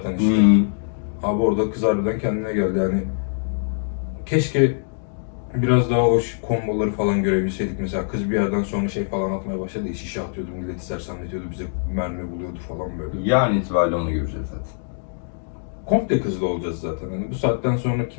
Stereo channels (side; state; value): right; silent; digital silence